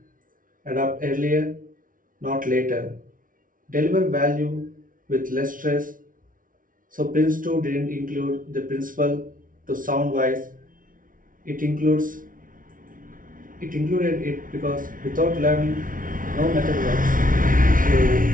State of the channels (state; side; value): late; left; 0.39 ms